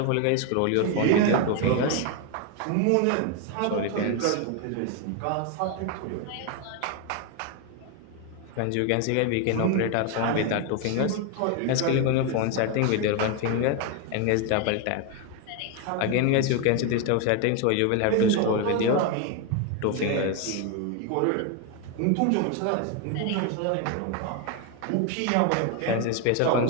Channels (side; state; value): both; different; correlation 0.01